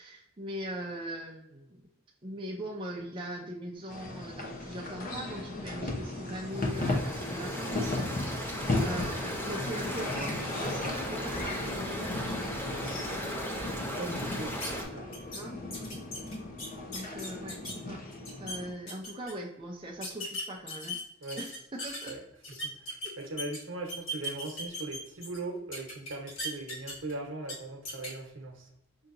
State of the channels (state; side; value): normal; both; correlation 0.40